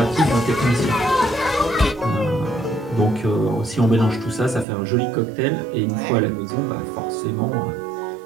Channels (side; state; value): left; drops out; at 4.7 s